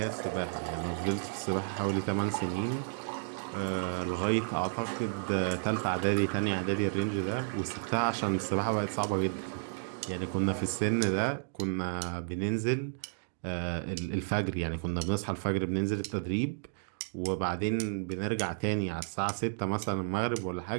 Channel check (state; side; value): silent; left; digital silence